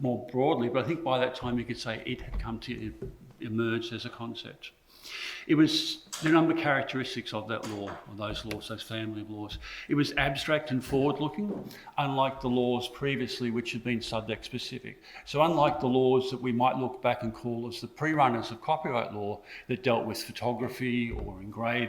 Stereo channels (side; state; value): both; identical; correlation 1.00